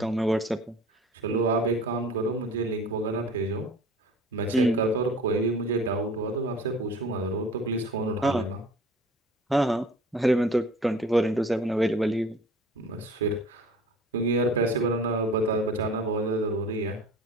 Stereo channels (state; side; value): normal; both; correlation 0.45